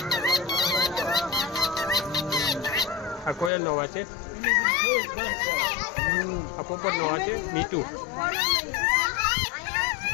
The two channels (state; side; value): drops out; right; at 3.5 s